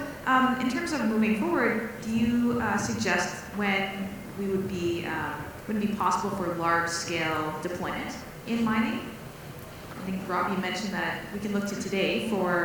in terms of moving forward, do you suggest when we would be possible for large-scale deployment in mining? I think, Rob, you mentioned that we can look to today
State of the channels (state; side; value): identical; both; correlation 1.00